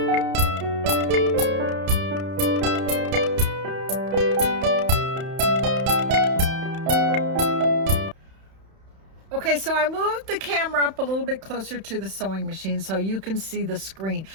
Okay, so I moved the camera up a little bit closer to the sewing machine so you can see the screen.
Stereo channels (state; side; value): late; left; 31 ms